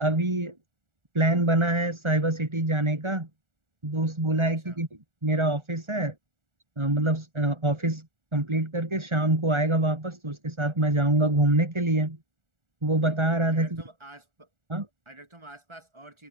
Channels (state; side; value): late; left; 1.4 ms